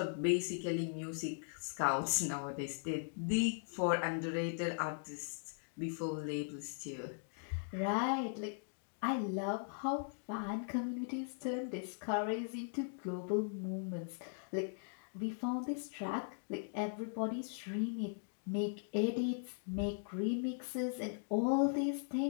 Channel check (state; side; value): silent; right; digital silence